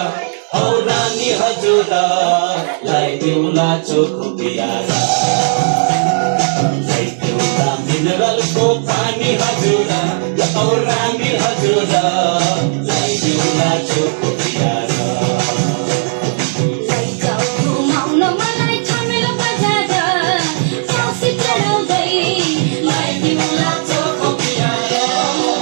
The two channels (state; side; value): silent; left; digital silence